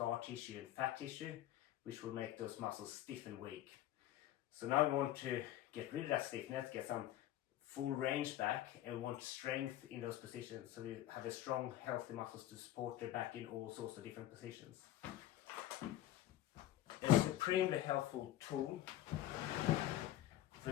tissue and fat tissue, which will make those muscles stiff and weak. So now we want to get rid of that stiffness, get some full range back, and we want strength in those positions. So you have a strong, healthy muscles to support the back in all sorts of different positions. A supremely helpful tool for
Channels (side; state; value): right; quieter; 13.4 dB